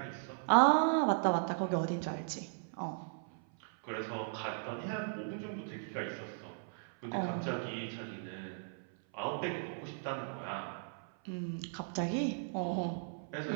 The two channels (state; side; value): silent; left; 53 dB below the other